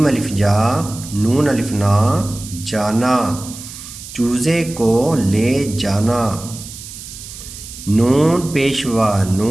अलिफ जा, नून अलिफ ना जाना, चूजे को ले जाना, नून पेशवा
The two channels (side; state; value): right; noise; hiss, 13 dB below the sound